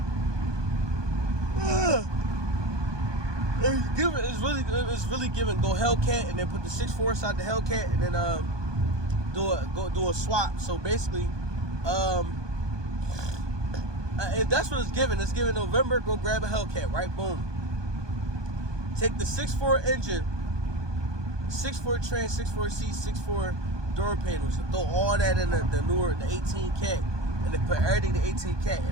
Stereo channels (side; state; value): left; late; 1.2 ms